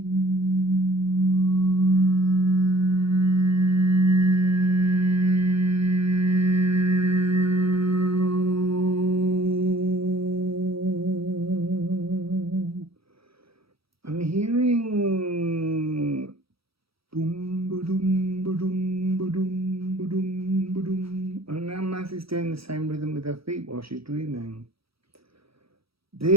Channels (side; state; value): left; late; 0.76 ms